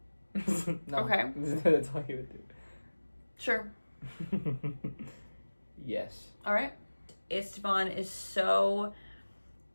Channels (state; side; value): inverted; both; correlation -1.00